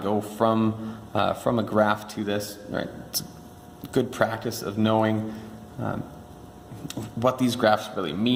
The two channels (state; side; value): identical; both; correlation 1.00